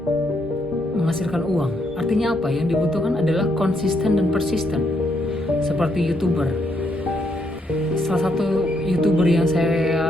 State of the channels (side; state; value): both; normal; correlation 0.76